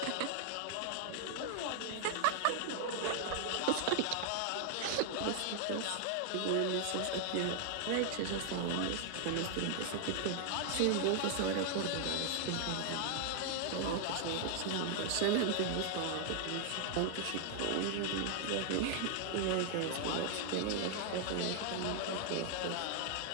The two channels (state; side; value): different; both; correlation 0.00